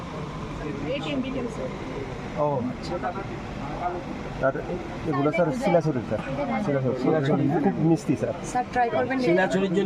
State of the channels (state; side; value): identical; both; correlation 1.00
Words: ও আচ্ছা আর এগুলো স্যার শিলাছড়ি স্যার শিলাছড়ি খুব মিষ্টি স্যার স্যার ট্রাই করবেন শিলাচুরির